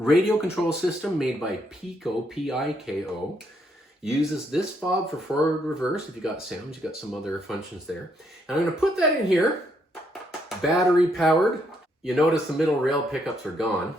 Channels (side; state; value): both; normal; correlation 0.74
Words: control system made by Piko, P-I-K-O. Uses this fob for forward reverse. If you got sounds, you got some other functions there. And I'm going to put that in here, battery powered. You notice the middle rail pickups are gone.